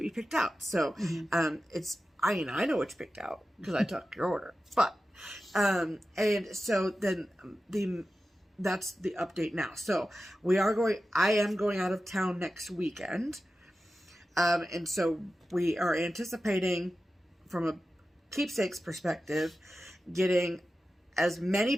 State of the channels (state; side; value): normal; both; correlation 0.93